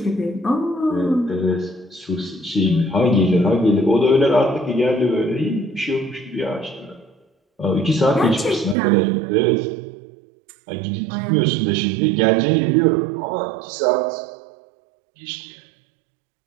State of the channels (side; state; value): left; drops out; at 8.8 s